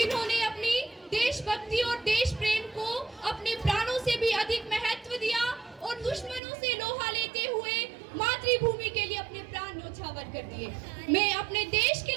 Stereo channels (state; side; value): drops out; left; at 6.4 s